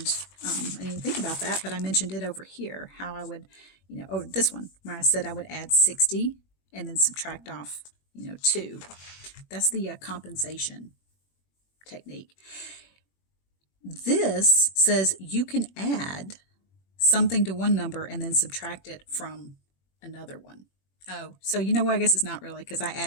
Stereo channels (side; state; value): right; late; 21 ms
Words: I didn't think about that, but I mentioned it over here, how I would, this one, where I said I would add 60 and then subtract off, 2. That's the compensation technique. This says you can add something to one number and then subtract it from another one. Oh, so I guess it's not really, because I